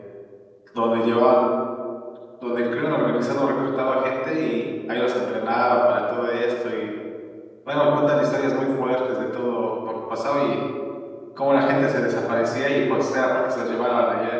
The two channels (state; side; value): identical; both; correlation 1.00